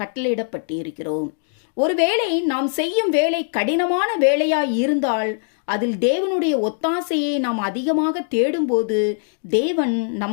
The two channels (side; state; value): right; silent; digital silence